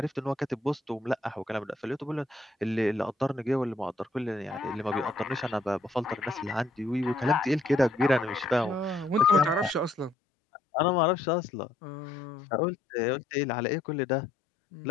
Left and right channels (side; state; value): right; drops out; at 10.2 s